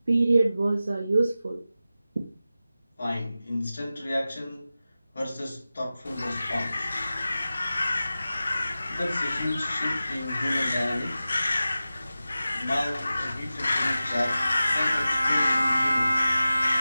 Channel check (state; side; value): inverted; both; correlation -0.95